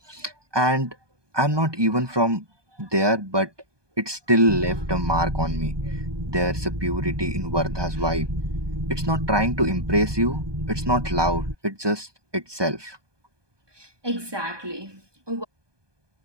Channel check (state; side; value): late; left; 1.2 ms